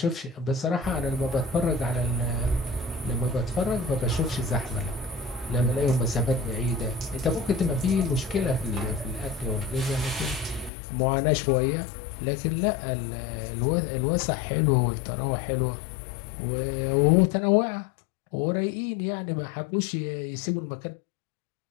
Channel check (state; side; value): drops out; right; at 10.7 s